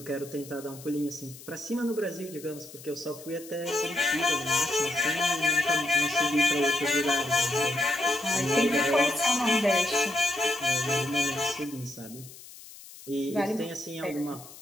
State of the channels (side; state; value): left; noise; hiss, 18 dB below the sound